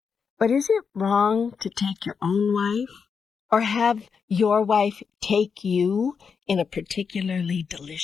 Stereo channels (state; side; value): quieter; right; 6.0 dB